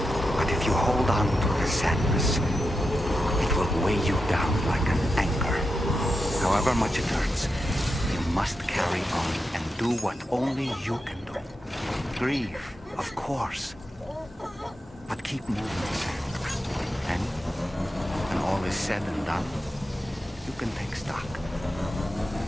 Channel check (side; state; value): both; normal; correlation 0.88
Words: But if you hold on to the sadness, it will weigh you down like an anchor. However much it hurts, you must carry on and do what only you can do. Grieve, of course. But keep moving, Sam. And when all is said and done, you can take stock